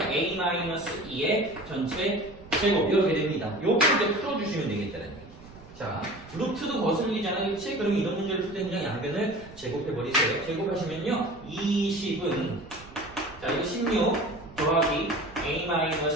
a-2의 전체 제곱 이렇게 됩니다. 요거 이제 풀어주시면 되겠다는 얘기. 자, 루트도 거슬리잖아요. 그치? 그럼 이런 문제를 풀 때 그냥 양변을 제곱해버리세요. 제곱하시면요. 20은 자, 이거 16 더하기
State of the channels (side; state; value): right; noise; rumble, 20 dB below the sound